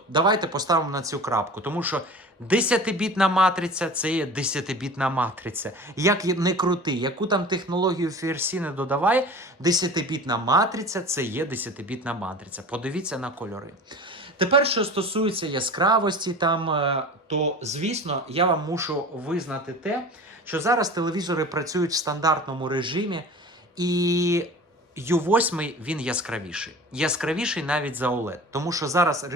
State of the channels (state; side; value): normal; both; correlation 0.37